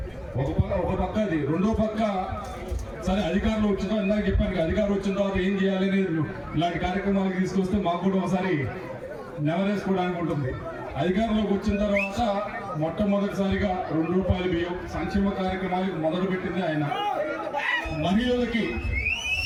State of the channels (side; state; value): both; identical; correlation 1.00